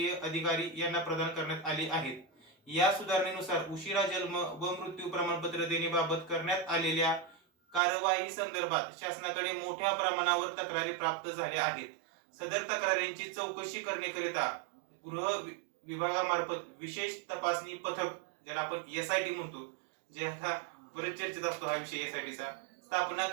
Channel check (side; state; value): left; drops out; at 7.8 s